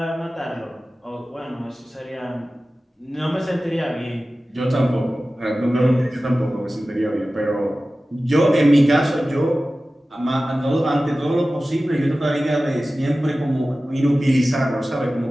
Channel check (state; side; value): normal; both; correlation 0.96